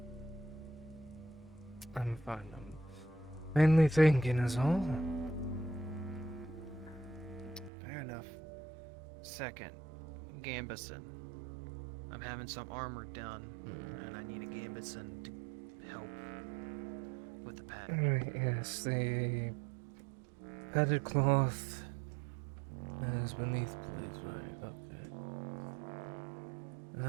I'm fine. I'm mainly thinking is all. Fair enough. Second, Gambison. I'm having some armor done, and I need a Gambison to help with the pack. Alright, yes, the padded cloth is beneath, please, right? Okay.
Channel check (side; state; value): left; drops out; at 7.7 s